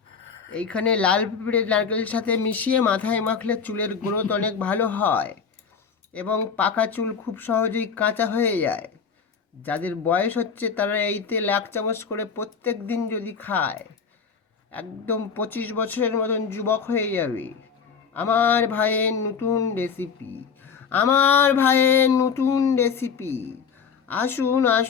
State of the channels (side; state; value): right; quieter; 6.2 dB